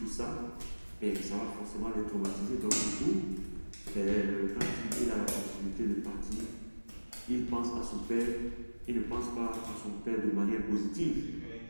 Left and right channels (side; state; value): both; inverted; correlation -1.00